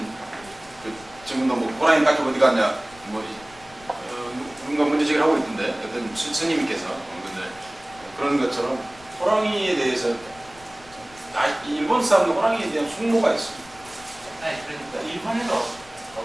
그 지금도 뭐 호랑이 가죽 어디 갔냐 뭐 누군가 문제제기를 하고 있던데 어떤 스님께서 근데 그런 것처럼 호랑이에 대해서 일본 사람도 호랑이에 대한 숙모가 있습니다. 아니 그러니까 일본에도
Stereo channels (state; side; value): noise; left; rumble, 23 dB below the sound